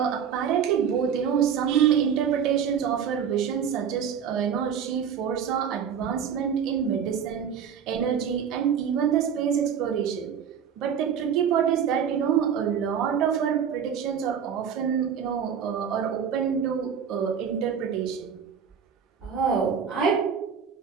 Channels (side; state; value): left; quieter; 7.7 dB